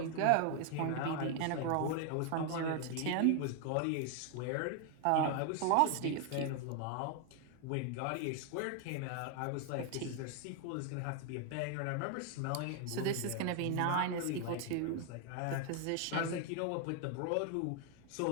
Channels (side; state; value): both; different; correlation 0.00